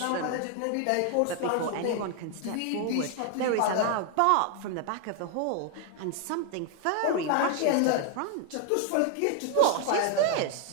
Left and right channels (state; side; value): different; both; correlation 0.00